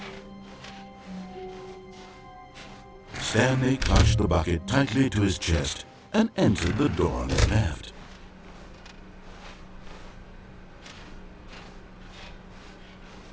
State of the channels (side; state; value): both; identical; correlation 1.00